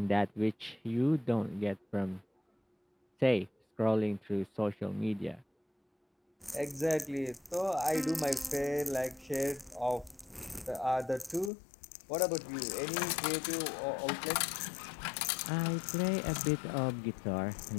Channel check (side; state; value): right; drops out; at 11.5 s